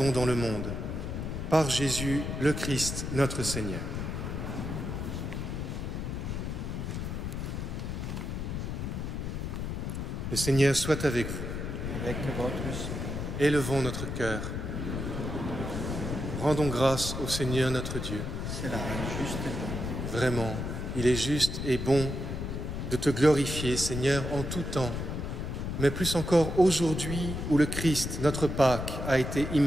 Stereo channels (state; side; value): noise; left; rumble, 4 dB below the sound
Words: dans le monde. Par Jésus, le Christ, notre Seigneur. Le Seigneur soit avec vous. Avec votre esprit. Élevons notre cœur. Rendons grâce au Seigneur notre Dieu. Cela est juste et bon. Vraiment, il est juste et bon de te glorifier, Seigneur, en tout temps, mais plus encore aujourd'hui où le Christ, notre Pâque, a été